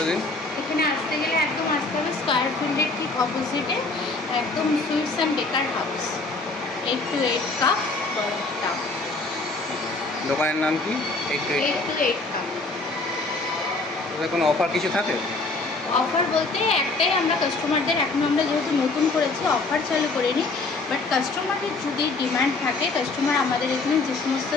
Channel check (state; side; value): quieter; right; 3.4 dB